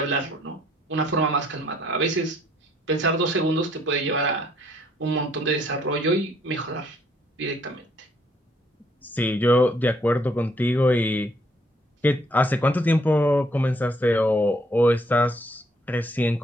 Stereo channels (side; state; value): both; normal; correlation 0.66